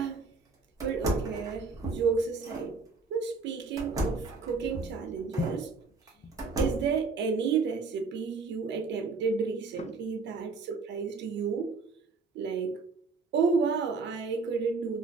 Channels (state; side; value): quieter; left; 4.3 dB